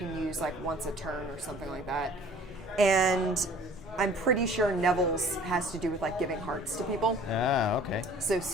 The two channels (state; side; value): noise; left; hum, 25 dB below the sound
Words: use once a turn or something like that. And I'm pretty sure Neville's has to do with giving hearts to people. Ah, okay. So